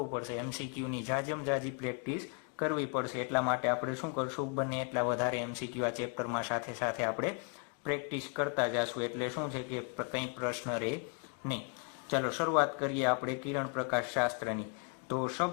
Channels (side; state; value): right; quieter; 38.2 dB